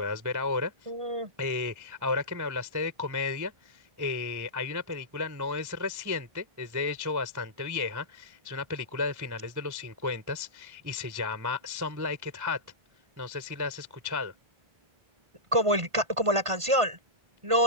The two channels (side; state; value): left; late; 1.5 ms